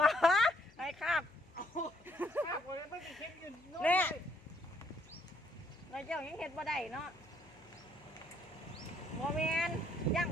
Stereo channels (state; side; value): noise; left; hum, 26 dB below the sound